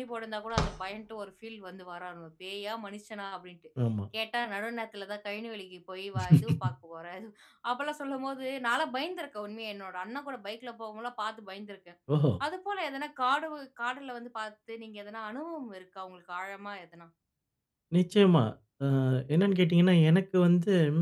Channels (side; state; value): both; identical; correlation 1.00